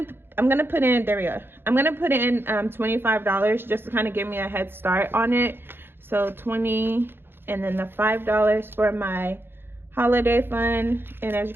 put in, there we go. I'm gonna put in $25 just to kind of give me a head start on it. So 20, and then the $5 for my holiday fund. And as you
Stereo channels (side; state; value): left; late; 0.10 ms